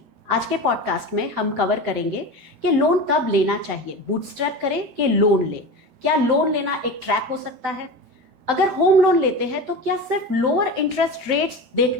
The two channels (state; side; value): late; left; 13 ms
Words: आज के पॉडकास्ट में हम कवर करेंगे कि लोन कब लेना चाहिए, बूटस्ट्रैप करें कि लोन ले, क्या लोन लेना एक ट्रैप हो सकता है, अगर होम लोन लेते हैं तो क्या सिर्फ लोअर इंटरेस्ट रेट्स